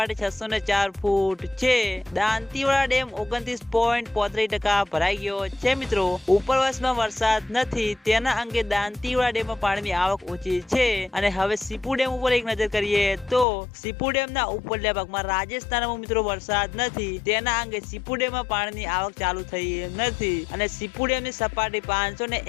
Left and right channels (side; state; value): right; drops out; at 13.5 s